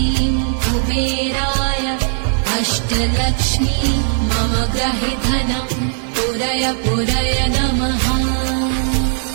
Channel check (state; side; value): silent; left; 66 dB below the other